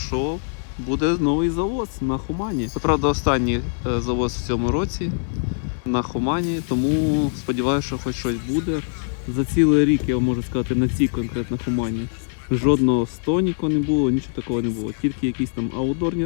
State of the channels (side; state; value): right; silent; digital silence